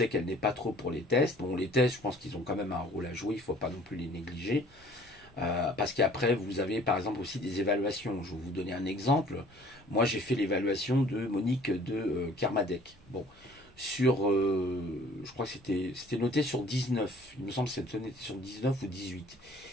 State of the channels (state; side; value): normal; both; correlation 0.54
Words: qu'elle n'est pas trop pour les tests. Bon, les tests, je pense qu'ils ont quand même un rôle à jouer, il ne faut pas non plus les négliger. Parce qu'après, vous avez par exemple aussi des évaluations. Je vais vous donner un exemple. Moi, j'ai fait l'évaluation de Monique de Kermadec. Bon, je crois que c'était noté sur 19. Il me semble que c'était noté sur 19 ou 18.